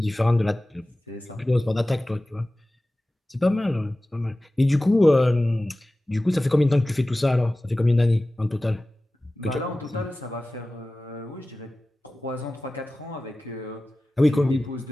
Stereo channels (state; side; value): normal; both; correlation 0.96